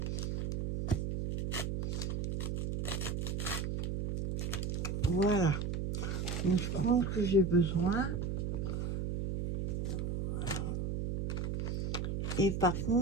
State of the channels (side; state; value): right; noise; hum, 1 dB below the sound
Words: Voilà. Donc, je prends ce que j'ai besoin. Et par